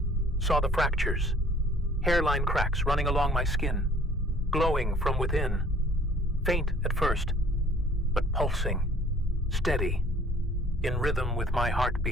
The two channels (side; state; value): both; normal; correlation 0.55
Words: saw the fractures, hairline cracks running along my skin, glowing from within, faint at first, but pulsing, steady, in rhythm with my